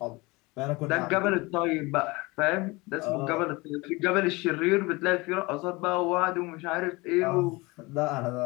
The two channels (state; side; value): quieter; right; 24.0 dB